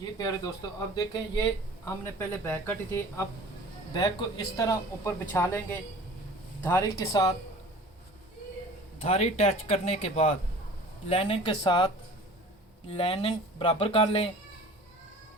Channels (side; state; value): both; normal; correlation 0.44